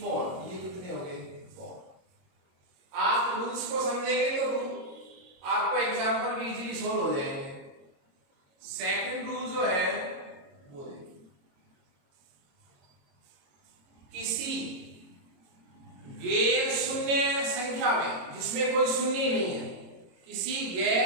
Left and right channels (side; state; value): left; late; 22 ms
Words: 4। ये कितने हो गए? 4। आप रूल्स को समझेंगे तो आपको एग्जांपल भी इजीली सोल्व हो जाएंगे।